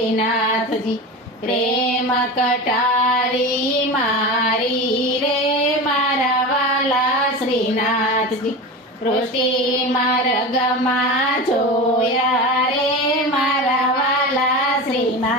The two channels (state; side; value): normal; both; correlation 0.27